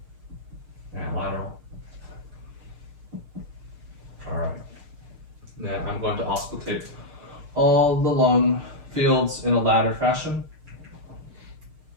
And lateral. All right. Then I'm going to auscultate all the lung fields in a ladder fashion.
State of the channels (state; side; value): late; left; 6.5 ms